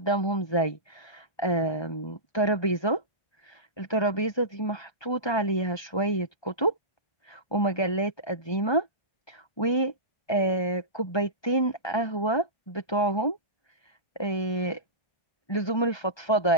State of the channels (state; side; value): late; right; 1.2 ms